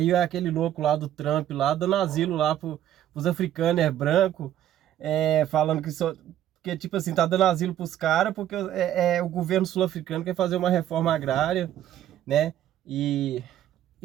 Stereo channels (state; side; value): quieter; left; 11.8 dB